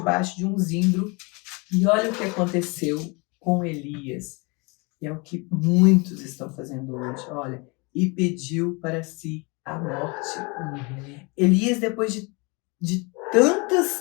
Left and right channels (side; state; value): right; quieter; 28.9 dB